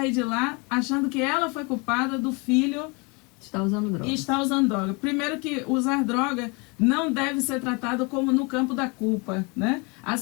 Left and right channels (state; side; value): quieter; right; 29.8 dB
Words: de lá achando que ela foi culpada do filho está usando droga. E está usando droga. Primeiro que usar droga não deve ser tratado como no campo da culpa, né?